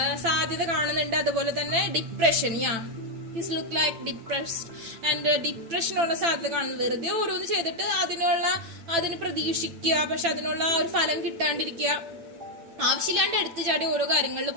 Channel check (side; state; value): left; late; 8.9 ms